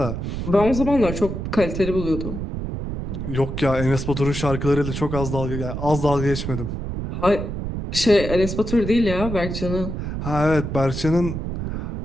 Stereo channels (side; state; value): right; noise; rumble, 5 dB below the sound